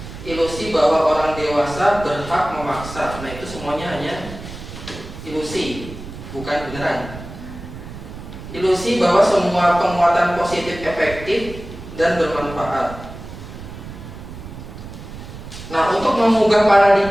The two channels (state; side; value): noise; right; rumble, 12 dB below the sound